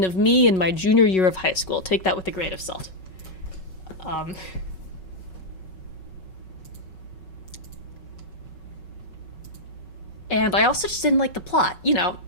of me in my junior year of high school. Take that with a grain of salt. And I also just didn't like the plot. You know,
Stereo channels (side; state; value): right; late; 5.4 ms